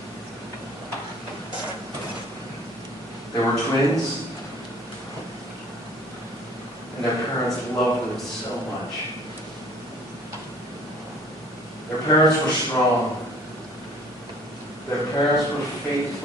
They were twins, and their parents loved them so much. Their parents were strong. Their parents were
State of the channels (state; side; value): normal; both; correlation 0.52